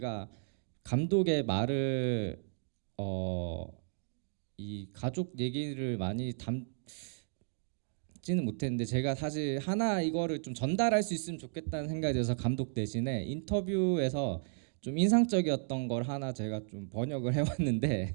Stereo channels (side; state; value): left; silent; digital silence